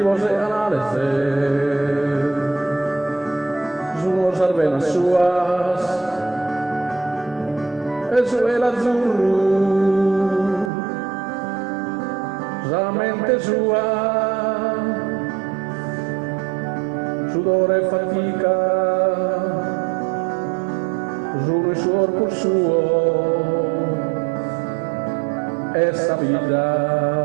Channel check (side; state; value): left; drops out; at 10.7 s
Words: analisi, sono sarvena suas, e su l'azzurro, la mente sua, sudore e fatica, giuro il suo corpo suo, essa